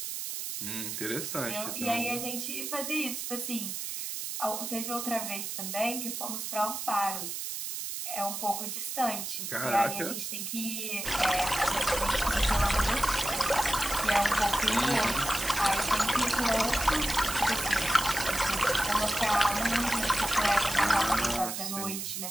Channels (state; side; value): noise; right; hiss, 5 dB below the sound